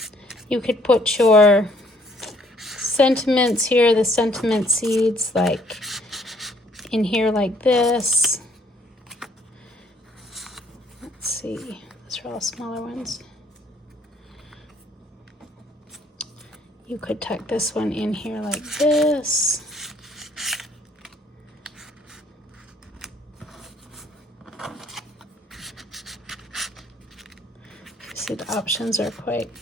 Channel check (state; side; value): normal; both; correlation 0.63